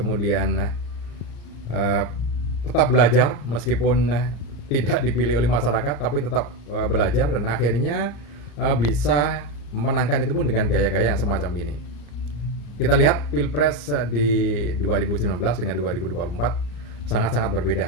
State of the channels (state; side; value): late; right; 35 ms